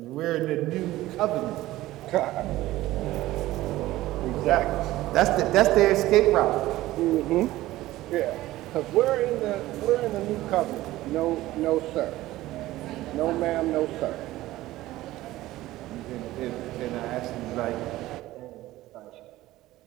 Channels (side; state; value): left; quieter; 16.4 dB